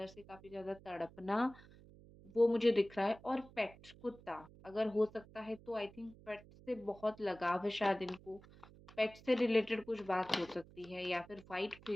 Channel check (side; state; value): right; noise; hum, 21 dB below the sound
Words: से काफ़ी ज़्यादा तड़पना, वो मुझे दिख रहा है। और पेट, कुत्ता, अगर हो सकता है तो आई थिंक पेट से बहुत लगाव है शायद इनको। पेट से रिलेटेड कुछ बात हो सकती है, या फिर व्हाइट